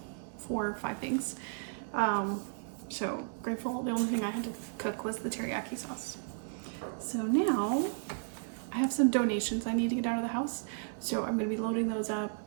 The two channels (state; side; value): silent; left; 55 dB below the other